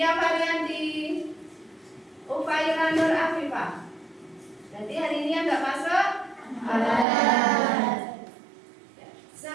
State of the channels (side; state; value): left; drops out; at 7.1 s